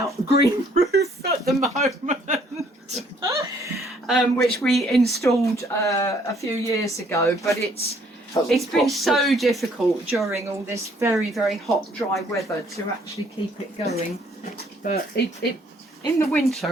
green roof at the moment, which we installed a few years ago. But it's been so difficult during all this very, very hot, dry weather to actually keep it going. But it in the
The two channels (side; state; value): both; normal; correlation 0.64